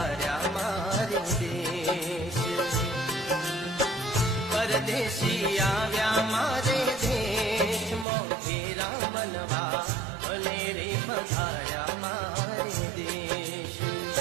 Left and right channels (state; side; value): drops out; left; at 8.1 s